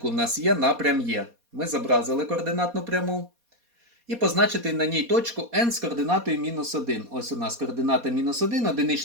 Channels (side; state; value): left; late; 4.2 ms